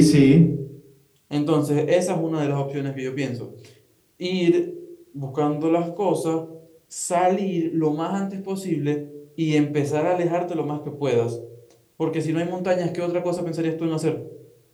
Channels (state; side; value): identical; both; correlation 1.00